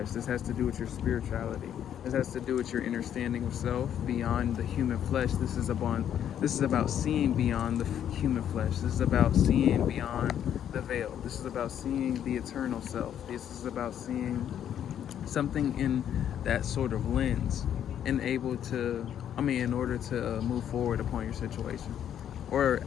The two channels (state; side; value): quieter; right; 9.8 dB